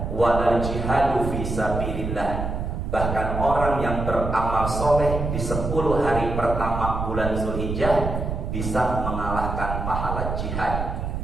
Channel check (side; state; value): right; noise; rumble, 3 dB below the sound